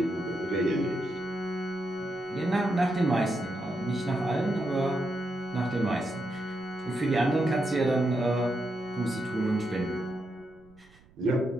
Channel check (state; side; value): noise; right; rumble, 28 dB below the sound